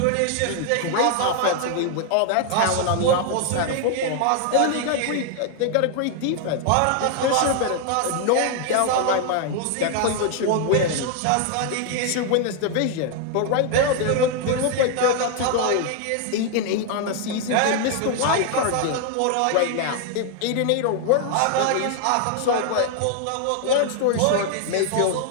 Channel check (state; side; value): different; both; correlation 0.00